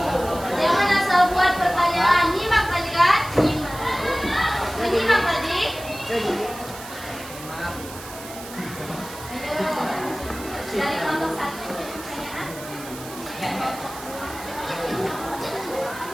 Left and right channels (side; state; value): right; noise; hiss, 14 dB below the sound